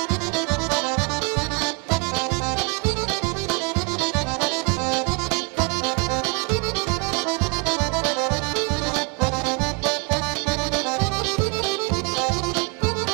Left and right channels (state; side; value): quieter; left; 31.6 dB